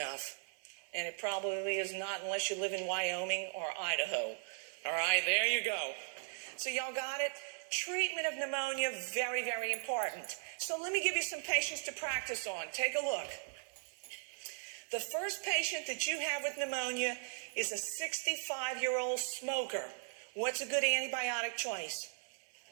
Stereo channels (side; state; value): left; silent; digital silence